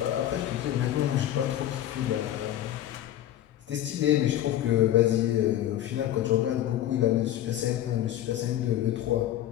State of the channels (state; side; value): quieter; right; 12.6 dB